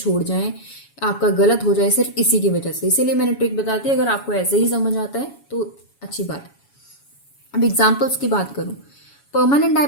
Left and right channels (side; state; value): right; late; 7.1 ms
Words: जाएं, आपका गलत हो जाए सिर्फ इसी की वजह से। इसीलिए मैंने ट्रिक बताती है, अगर आपको ऐसे ही समझ आता है तो अच्छी बात है। अब एग्जाम्पल्स की बात करूँ, परमानेंट